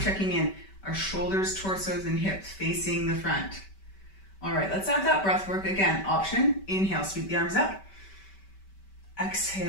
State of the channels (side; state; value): right; late; 5.2 ms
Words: in. Our shoulders, torsos, and hips facing the front. All right, let's add that breath work again. Option, inhale, sweep the arms up.